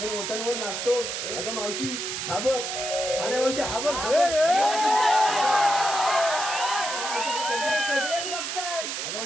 ओठांवर नाचतो अगं मावशी हा बघ अरे मावशी हा बघ सगळेच बघताय अगं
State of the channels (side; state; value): right; noise; hiss, 4 dB below the sound